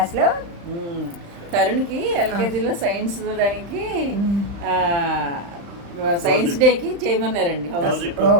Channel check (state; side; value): late; left; 35 ms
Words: తరుణ్కి ఎల్కేజీలో సైన్స్ దానికి సైన్స్ డేకి చేయమన్నారండి హౌస్